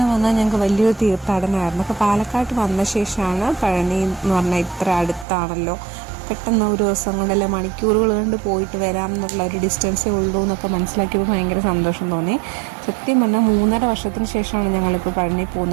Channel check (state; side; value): drops out; left; at 5.2 s